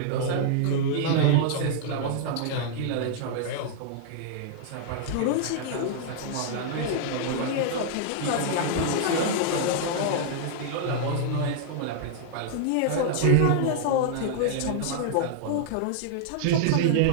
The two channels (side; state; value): both; different; correlation -0.01